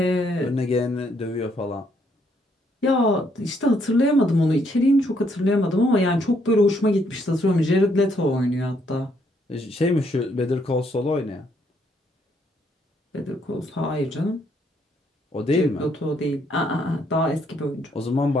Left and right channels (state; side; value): normal; both; correlation 0.71